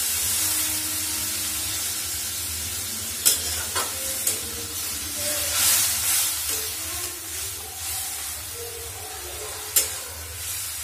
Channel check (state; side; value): identical; both; correlation 1.00